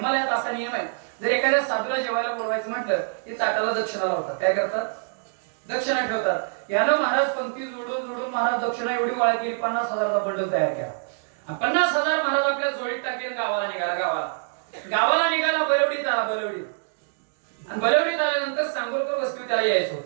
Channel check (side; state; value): left; silent; digital silence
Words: असा नियम आहे जर एखाद्या साधूला जेवायला बोलवायचं म्हटलं की ताटाला दक्षिणा लावतात. काय करतात दक्षिणा ठेवतात. यानं महाराज पंक्ती जोडून महाराज दक्षिणा एवढी गोळा केली 50,000चा बंडल तयार केला. 50,000 महाराज आपल्या जोडीत टाकले. गावाला निघाला. बलवडीत आला. आणि बलवडीत आल्यानंतर सांगोलकर वस्ती त्याला यायचं